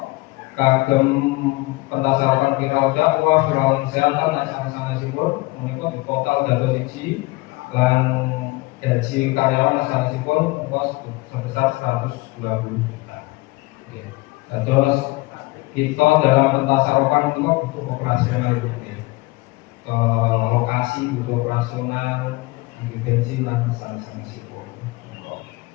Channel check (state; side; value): quieter; right; 22.5 dB